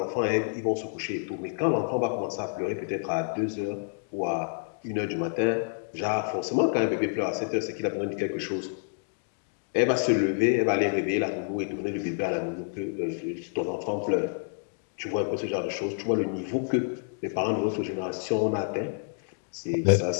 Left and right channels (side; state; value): right; silent; digital silence